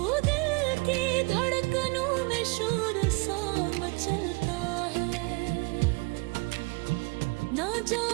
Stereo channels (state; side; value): quieter; left; 29.1 dB